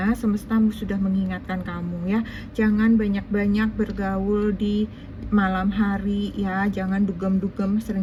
semesta sudah mengingatkan kamu ya. Jangan banyak-banyak bergaul di malam hari ya. Jangan dugem-dugem,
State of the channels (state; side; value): identical; both; correlation 1.00